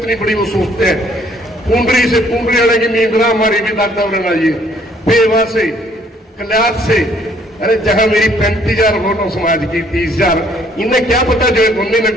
बड़ी वो सोचते हैं। पुंडरी से पुंडरी आने की नींद ना हमारी भी दादा उड़ना ये पेवा से कल्याण से। अरे जहां मेरी 35,000 वोटों समाज की 30,000, इन्हें क्या पता जो उन्होंने ने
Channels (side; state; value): both; normal; correlation 0.63